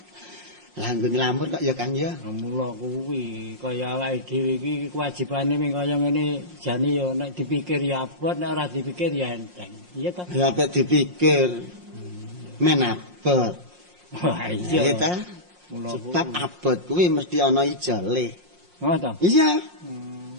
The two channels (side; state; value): left; late; 5.6 ms